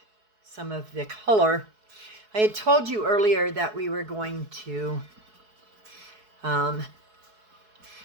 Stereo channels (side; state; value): left; late; 4.7 ms